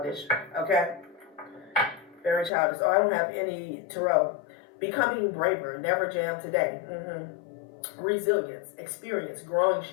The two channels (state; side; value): drops out; right; at 2.5 s